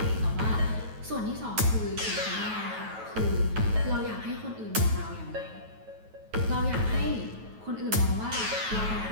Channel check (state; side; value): late; left; 9.2 ms